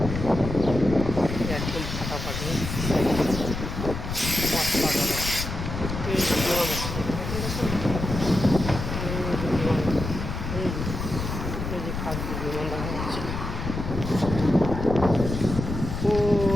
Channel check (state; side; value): noise; left; rumble, 5 dB below the sound